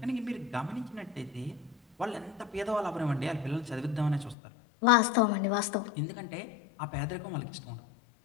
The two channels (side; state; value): right; drops out; at 4.4 s